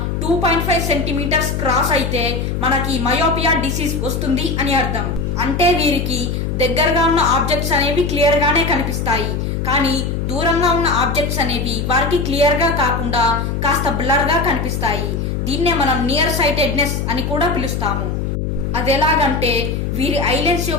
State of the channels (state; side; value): noise; left; hum, 2 dB below the sound